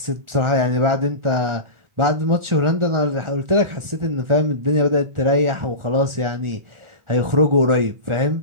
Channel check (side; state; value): left; late; 1.4 ms